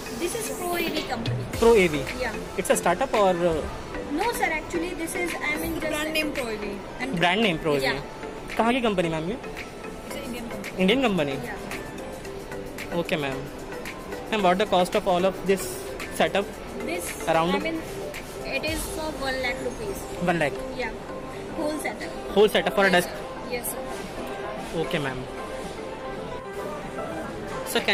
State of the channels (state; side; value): identical; both; correlation 1.00